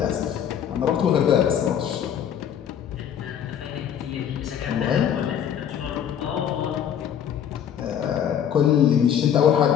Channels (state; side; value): quieter; right; 9.1 dB